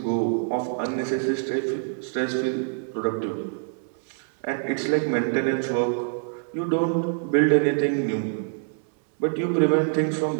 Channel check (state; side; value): silent; left; 62 dB below the other